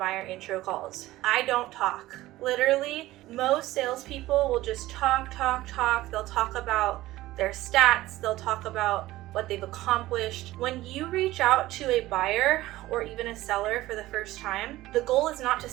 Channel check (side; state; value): left; quieter; 16.7 dB